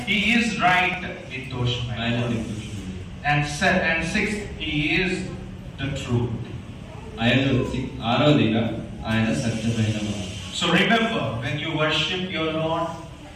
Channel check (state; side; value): identical; both; correlation 1.00